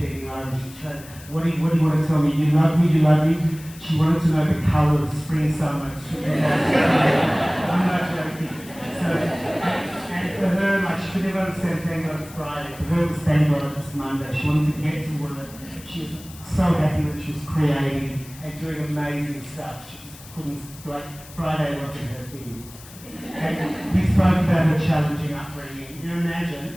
over, and she's trying, what do you want to tell me? You love me? She wanted to know the colour of spring, summer. I'm not joking. So, and for her, like, she could never understand thank God it's Friday. For her, it was thank God it's Monday. She wanted to get to work. She was so happy that she was creating and doing amazing stuff. She just couldn't, like, Friday wasn't her thing. And we spoke about her challenging upbringing. You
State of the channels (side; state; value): left; noise; hiss, 19 dB below the sound